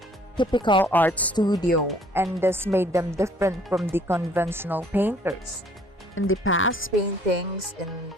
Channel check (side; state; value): both; normal; correlation 0.59